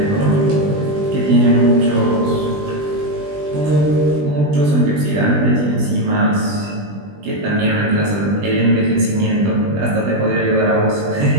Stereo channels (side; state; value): left; late; 20 ms